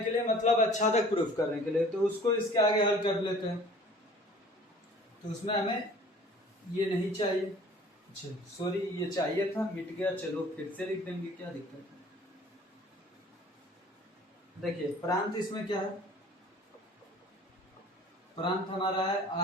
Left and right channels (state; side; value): normal; both; correlation 0.49